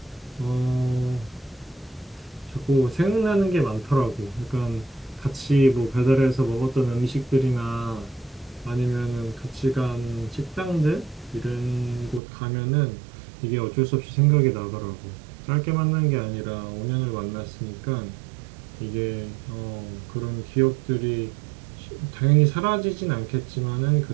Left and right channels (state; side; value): drops out; left; at 12.2 s